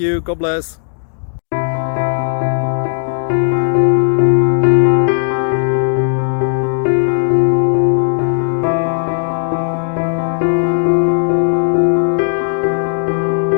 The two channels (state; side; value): silent; right; digital silence